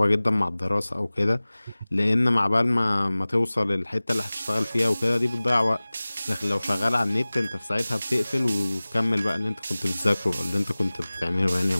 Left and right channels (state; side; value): inverted; both; correlation -0.99